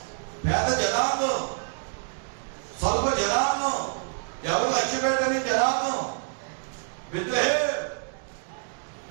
పేద జనాంగం, స్వల్ప జనాంగం, ఎవరు లక్ష్య పెట్టని జనాంగం బెత్లెహేము.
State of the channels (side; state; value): left; silent; digital silence